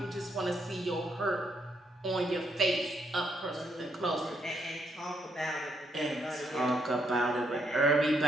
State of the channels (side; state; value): both; normal; correlation 0.75